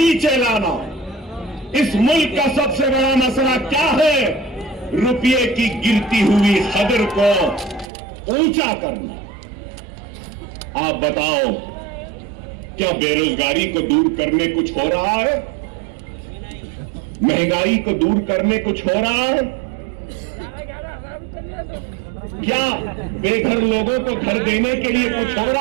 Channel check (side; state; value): left; drops out; at 7.9 s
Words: लाना। इस मुल्क का सबसे बड़ा मसला क्या है? रुपये की गिरती हुई कदर को ऊंचा करना। आप बताओ, क्या बेरोजगारी को दूर करने कुछ हो रहा है? महंगाई को दूर करने कुछ हो रहा है? क्या बेघर लोगों को घर देने के लिए कुछ हो